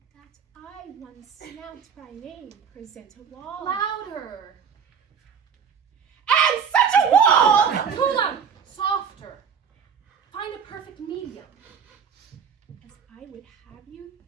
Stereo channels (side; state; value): left; quieter; 7.0 dB